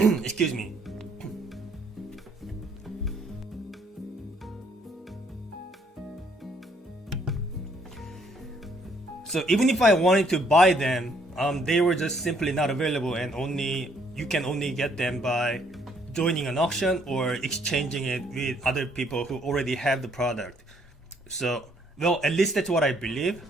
Excuse me. So even if I wanted to buy them, they were just simply not available, and you can only get them by joining an auction or exchanging it with other people who already have the product. So, well, at least that's what I believe.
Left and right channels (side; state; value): both; normal; correlation 0.67